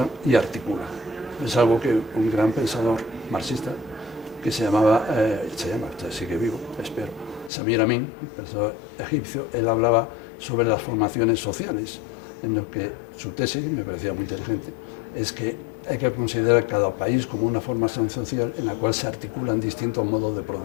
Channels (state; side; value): drops out; right; at 7.5 s